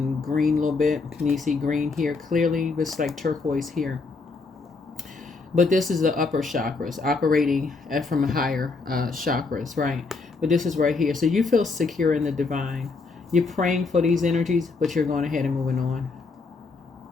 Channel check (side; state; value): right; quieter; 4.1 dB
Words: green a little bit. Can you see green here clearly? It's like turquoise here. But this is the upper chakras operating from higher chakras, right? But this is right here. So you feel secure in the divine. You're praying for these energies, but you're going ahead and moving on.